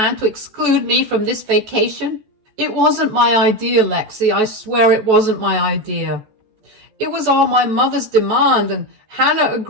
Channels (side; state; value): left; late; 14 ms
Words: to exclude me from this vacation?" "It wasn't my idea, Lexi. I swear it wasn't my idea. It was all my mother's demand, and Hannah